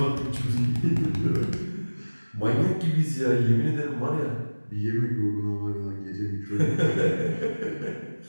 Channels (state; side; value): inverted; both; correlation -1.00